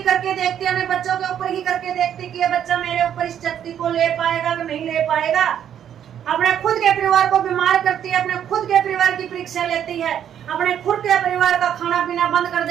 करके देखते, अपने बच्चों के ऊपर ही करके देखते कि ये बच्चा मेरे ऊपर इस शक्ति को ले पाएगा कि नहीं ले पाएगा। अपने खुद के परिवार को बीमार करती है, अपने खुद के परिवार की परीक्षा लेती है, अपने खुद के परिवार का खाना पीना बंद कर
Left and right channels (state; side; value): quieter; left; 9.6 dB